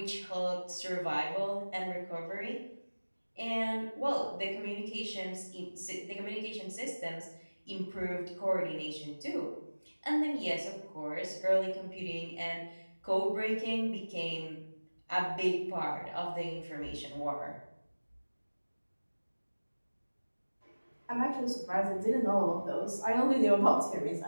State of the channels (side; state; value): both; inverted; correlation -1.00